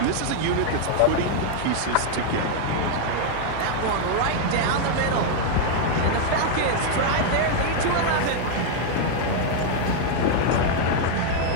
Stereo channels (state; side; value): different; both; correlation 0.00